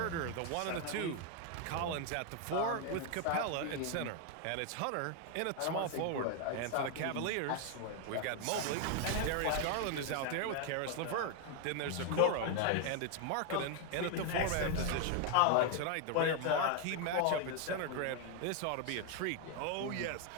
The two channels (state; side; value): different; both; correlation 0.00